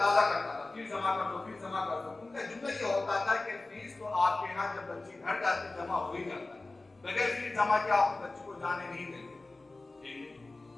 کرتا تھا، فیس جمع کر دو، فیس جمع کر دو۔ ان کا جملہ یہ ہوتا تھا کہ فیس تو آپ کے یہاں جب بچی گھر جاتی جمع ہو ہی جاتا ہے، بغیر فیس جمع کیا آپ بچی کو جانے نہیں دیں گے۔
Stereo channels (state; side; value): quieter; right; 3.2 dB